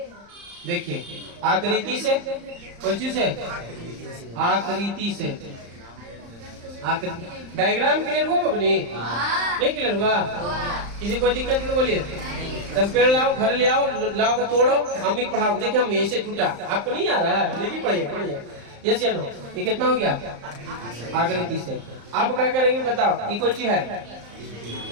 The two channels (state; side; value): late; left; 35 ms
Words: देखिए आकृति से, कौन सी से? आकृति से। डायग्राम क्लियर हुआ बबनी? नहीं क्लियर हुआ? किसी को दिक्कत तो बोलिए। तब पेड़ लाओ, घर ले आओ, लाओ के तोड़ो, अम्मी को पढ़ाओ। देखिए हम ऐसे टूटा, आपको नहीं आ रहा है, लेकिन पढ़िए पढ़िए। यस या नो? ये कितना हो गया? आकृति से। अब क्या करेंगे बताओ? ये कौन सी है?